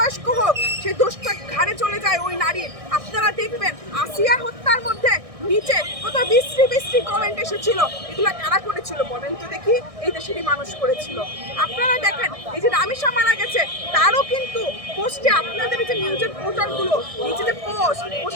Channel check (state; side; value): late; left; 1.6 ms